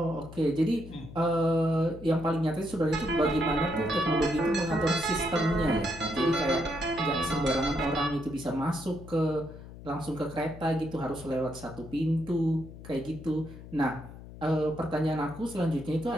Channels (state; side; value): noise; left; hum, 15 dB below the sound